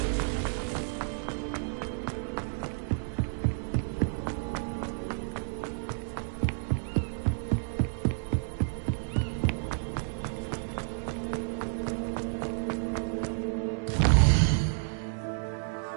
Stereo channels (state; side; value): silent; left; 57 dB below the other